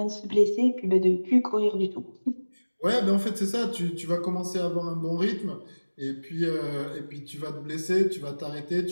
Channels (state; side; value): inverted; both; correlation -1.00